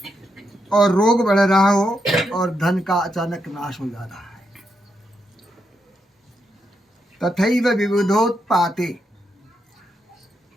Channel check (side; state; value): both; normal; correlation 0.82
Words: और रोग बढ़ रहा हो और धन का अचानक नाश हो जा रहा है, तथैव विविधोत्पाते